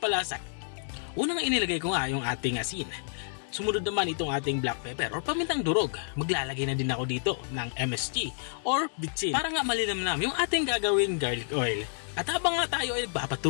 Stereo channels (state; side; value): silent; right; digital silence